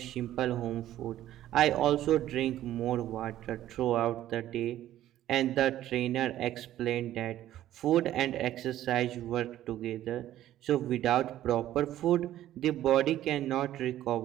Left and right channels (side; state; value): left; quieter; 13.1 dB